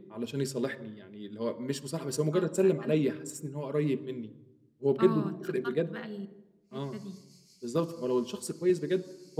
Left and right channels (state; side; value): identical; both; correlation 1.00